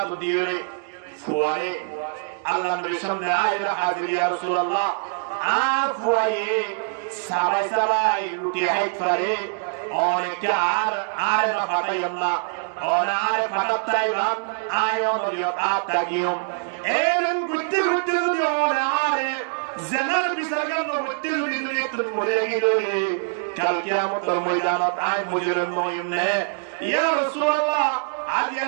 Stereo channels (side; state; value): left; silent; digital silence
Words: দিয়ে ফুয়ারে আল্লাহ নবীর সামনে আইলা হাজির ইয়া রাসূলুল্লাহ আফওয়ায়ে সাবাই সাবাই রুটি হাইত পারে অনেকে আর না ফাটাই আল্লাহ আর ফাটাই বাম আয়ন রিয়ত আতাগিয়ম এরন গুত্তি গুত্তি যদি আর জানার বিচারগান গুত্তি যদি তুমি মরে গিয়ে কাল কিয়ামতের ময়দানত আই মুজরিম নয়মনে ইয়া রাসূলুল্লাহ আজ